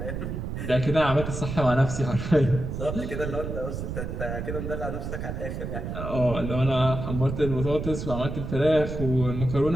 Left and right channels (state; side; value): noise; right; rumble, 5 dB below the sound